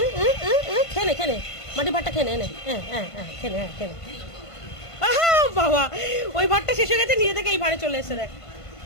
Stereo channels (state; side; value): late; right; 1.5 ms